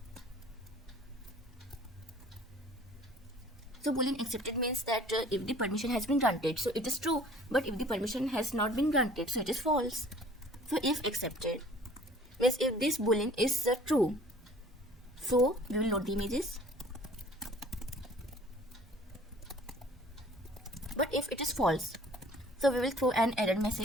So boolean accepted means that if the permission has been granted, so it is true, but if the permission has not been granted, so it is false. So if accepted means if this boolean is true, so we will load the images. But if it is false, so we will throw an error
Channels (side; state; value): both; normal; correlation 0.51